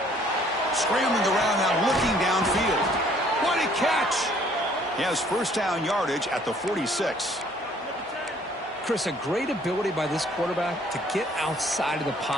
Scrambling around now, looking downfield. What a catch! He has first down yardage at the 46. Chris, a great ability by this quarterback to get outside of the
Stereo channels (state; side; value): normal; both; correlation 0.60